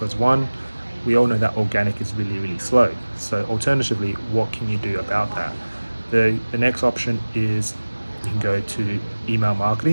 one, we all know that organic is really, really slow. So alternatively, what can you do about that? The next option is you can go to email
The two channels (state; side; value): inverted; both; correlation -1.00